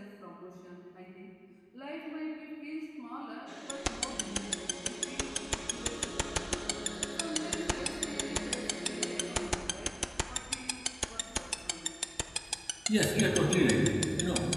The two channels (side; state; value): both; identical; correlation 1.00